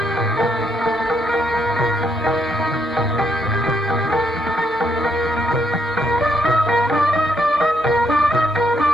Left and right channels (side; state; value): both; normal; correlation 0.75